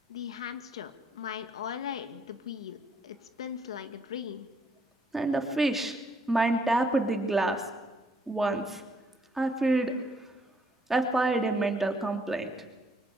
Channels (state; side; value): normal; both; correlation 0.68